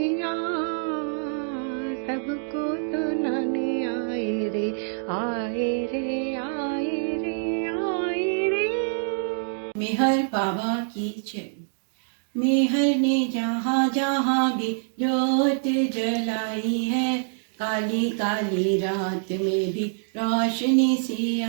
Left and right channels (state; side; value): silent; left; digital silence